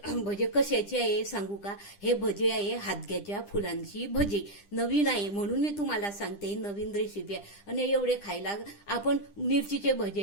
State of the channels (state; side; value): late; right; 10 ms